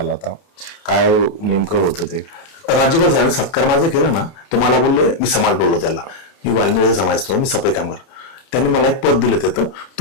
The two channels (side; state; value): right; late; 30 ms